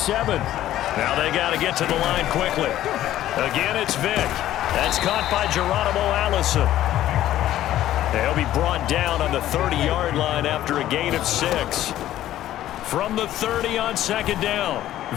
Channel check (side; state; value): right; quieter; 13.2 dB